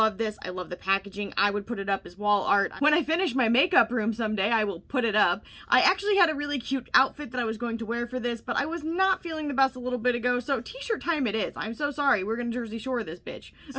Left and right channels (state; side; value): identical; both; correlation 1.00